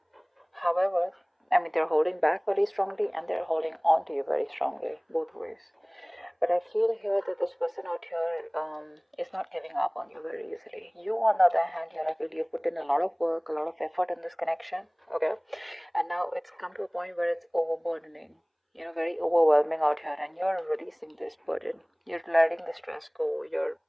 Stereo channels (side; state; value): both; identical; correlation 1.00